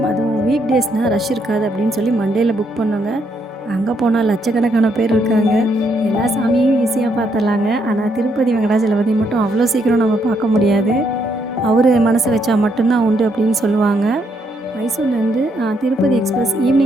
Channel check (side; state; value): both; normal; correlation 0.75